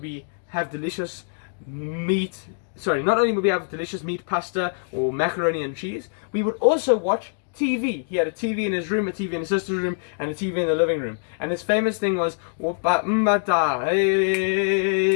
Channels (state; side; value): silent; right; digital silence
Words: we have delicious meat pasta or macaroni and cheese, we would also watch TV. He had a TV in his room, a TV in his sister's room, and a TV in the living room. And his famous thing was,